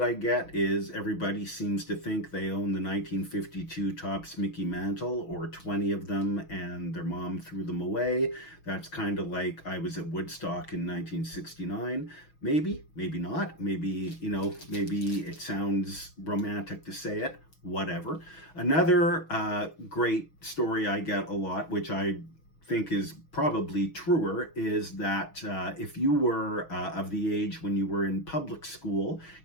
I get is everybody seems to think they own the 1952 Topps Mickey Mantle, or 20 of them, and their mom threw them away. That's kind of like I was at Woodstock in 1969. Maybe, maybe not. Maybe, maybe it sounds romantic to say it. Whatever. Another great story I get a lot, which I think is probably truer, is that if you were of the age when you were in public school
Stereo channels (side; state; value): right; late; 6.2 ms